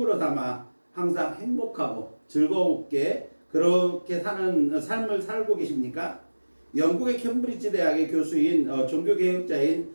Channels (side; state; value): both; inverted; correlation -1.00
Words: 삼아 항상 행복하고 즐겁게 그렇게 사는 삶을 살고 계십니까? 영국의 캠브리지 대학의 교수인 종교개혁자인